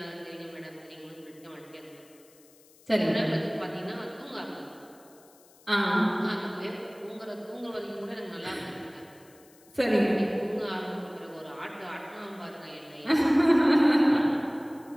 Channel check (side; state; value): left; noise; hiss, 27 dB below the sound